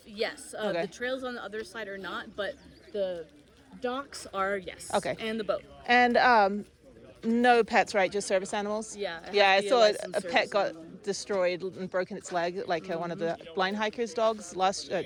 yes. Okay. The trails on the other side are not, but the Docks are, yes. Okay. And the boat. And no pets, right? Just service animals? Yeah. Yeah, I saw a licensed pet service got animal. destroyed and broken its leg, like one of the blind hikers' dogs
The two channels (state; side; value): identical; both; correlation 1.00